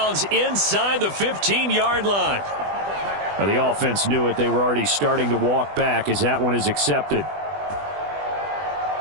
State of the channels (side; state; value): left; late; 20 ms